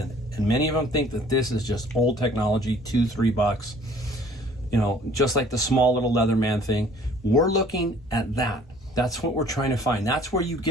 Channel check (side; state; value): both; normal; correlation 0.54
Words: And many of them think that this is just old technology, $2-3, just like the small little Leatherman thing. We're looking at that. That's what we're trying to find. That's where you